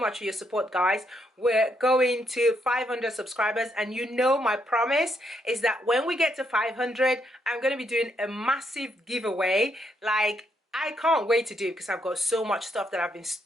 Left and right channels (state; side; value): normal; both; correlation 0.76